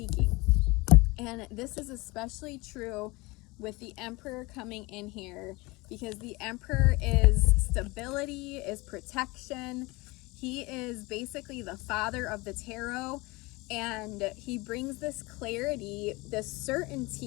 And this is especially true with the Emperor coming in here, because the Emperor is stability, is protection. He is basically the father of the tarot, and he brings this clarity, this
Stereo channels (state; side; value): quieter; right; 23.8 dB